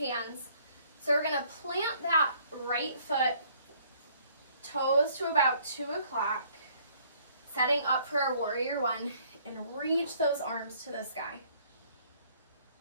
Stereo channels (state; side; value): inverted; both; correlation -0.61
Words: So we're going to plant that right foot, toes to about 2 o'clock, setting up for our warrior one, and reach those arms to the sky.